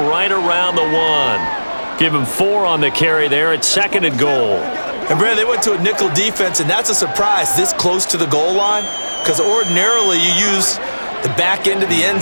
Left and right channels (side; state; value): both; inverted; correlation -1.00